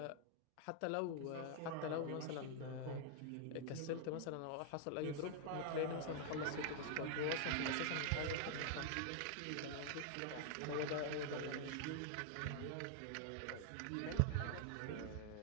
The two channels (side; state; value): both; different; correlation 0.00